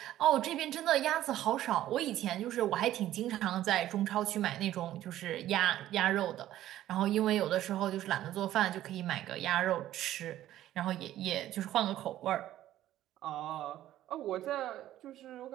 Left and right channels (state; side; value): quieter; left; 13.4 dB